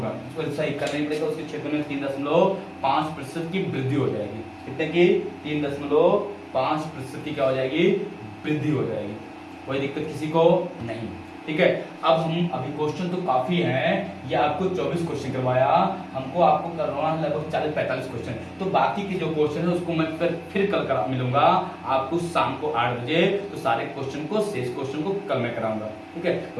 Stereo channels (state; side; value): identical; both; correlation 1.00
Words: उसको सही करना पड़ेगा। उसके क्षेत्र में 3.5% की वृद्धि हो जाएगी, कितने की 3.5% की क्या हो जाएगी, वृद्धि हो जाएगी। कोई दिक्कत किसी को नहीं, ठीक है। अब हम अभी क्वेश्चन तो काफी हैं, ये आपको 24 क्वेश्चन करवाया, हमको आपको करवाना है लगभग 40-45 क्वेश्चन, तो बाकी के जो क्वेश्चन है उसको मैं फिर कल करा मिलूंगा आपको शाम को 8 बजे, तो सारे क्वेश्चन को, शेष क्वेश्चन को कल मैं कराऊंगा, ठीक है।